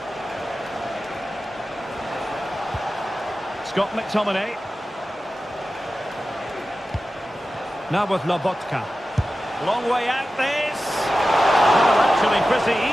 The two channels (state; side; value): normal; both; correlation 0.94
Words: Scott McTominay. Now with Lobotka. Long way out this. Well, actually pretty